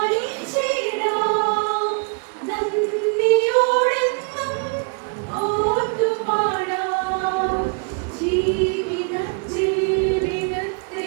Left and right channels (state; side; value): quieter; left; 37.9 dB